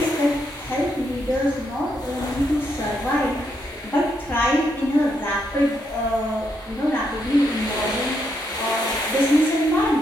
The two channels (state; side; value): normal; both; correlation 0.78